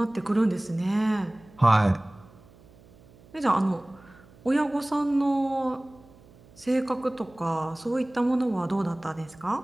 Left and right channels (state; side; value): noise; right; hum, 25 dB below the sound